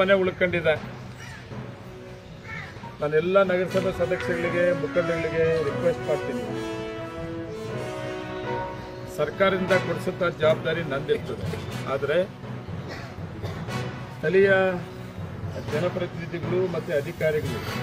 ಉಳ್ಕೊಂಡಿದೆ. ನಾನೆಲ್ಲ ನಗರಸಭೆ ಸದಸ್ಯರಿಗೆ, ಮುಖಂಡಗಳಿಗೆ ರಿಕ್ವೆಸ್ಟ್ ಮಾಡ್ತೀನಿ, ಸರ್ಕಾರದಿಂದ ಕೊಡಿಸುತ್ತ ಜವಾಬ್ದಾರಿ ನಂದಿರ್ತದೆ. ಆದರೆ ಸ್ಥಳೀಯ ಜನಪ್ರತಿನಿಧಿಗಳು ಮತ್ತು ಅಧಿಕಾರಿಗಳು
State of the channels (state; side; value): identical; both; correlation 1.00